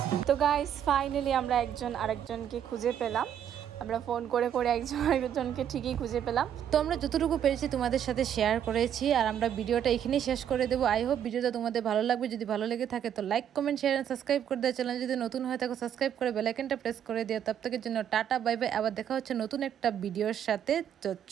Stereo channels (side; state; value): left; quieter; 9.5 dB